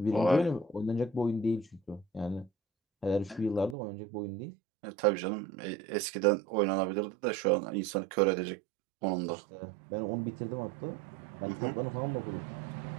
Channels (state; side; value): drops out; left; at 3.8 s